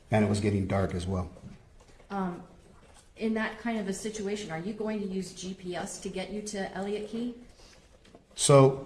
And it was getting dark as well. In that kind of a situation, are you going to use GPS to get you to Elliott Key?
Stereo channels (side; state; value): both; identical; correlation 1.00